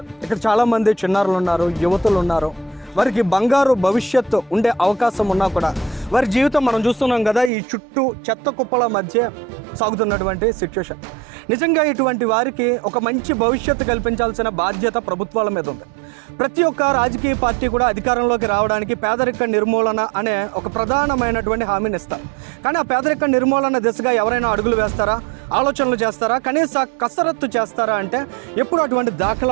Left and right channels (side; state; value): left; drops out; at 7.5 s